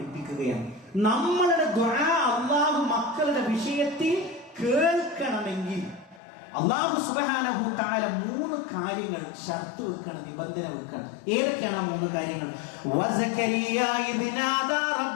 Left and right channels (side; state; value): right; drops out; at 6.2 s